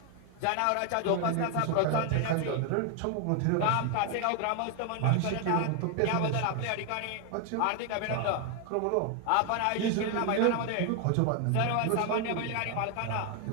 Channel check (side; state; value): both; different; correlation 0.01